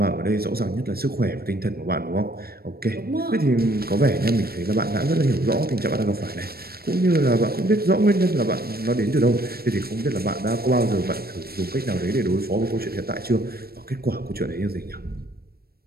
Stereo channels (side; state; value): left; late; 0.45 ms